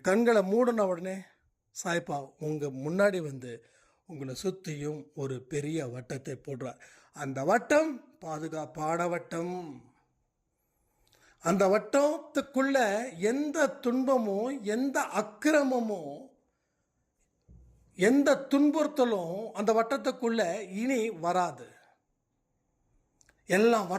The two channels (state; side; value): identical; both; correlation 1.00